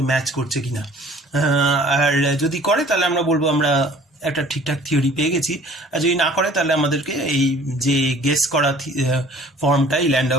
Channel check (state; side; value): normal; both; correlation 0.51